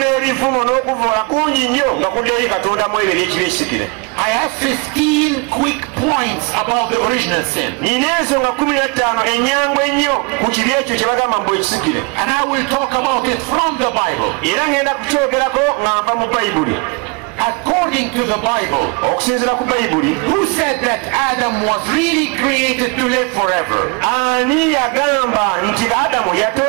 n'okuvuula kungi nnyo nga kudda eri Katonda mu ebyo eby'ekibi ekisikire. I have 15 quick points about the original sin. Nina ensonga 15 ennyangu ennyo ku kibi ekyo kye bagamba mbu ekisikire. And I will talk about it from the Bible. Era ngenda kukyogerako nga nva mu Bayibuli. According to the Bible, okusinziira ku Bayibuli, who said that Adam was really created to live forever? Ani yagamba nti Adamu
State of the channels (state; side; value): quieter; left; 30.6 dB